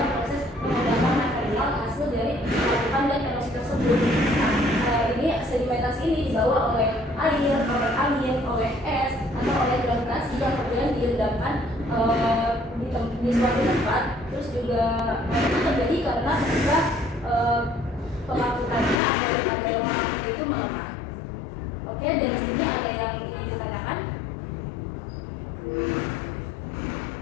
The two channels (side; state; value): right; drops out; at 19.0 s